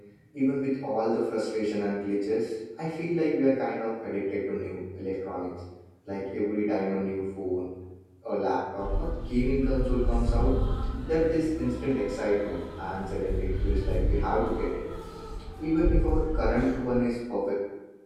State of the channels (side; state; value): both; identical; correlation 1.00